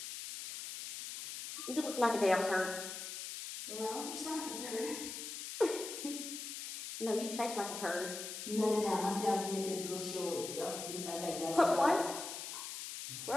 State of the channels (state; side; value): noise; left; hiss, 7 dB below the sound